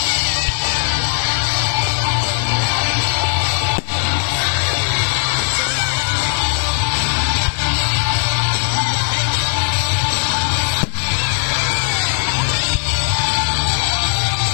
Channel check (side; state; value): right; silent; digital silence